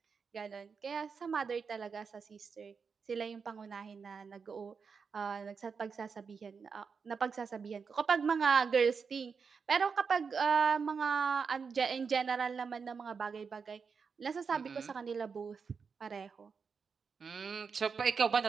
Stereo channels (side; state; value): left; quieter; 5.6 dB